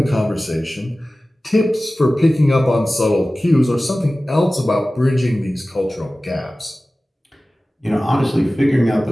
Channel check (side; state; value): both; normal; correlation 0.97